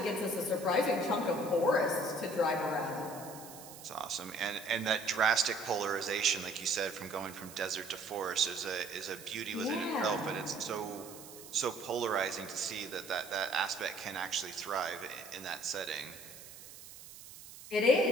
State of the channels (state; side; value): noise; right; hiss, 16 dB below the sound